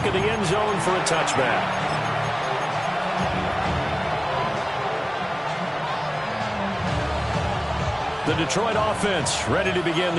of the end zone for a touchback. The Detroit offense ready to begin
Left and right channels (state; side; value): identical; both; correlation 1.00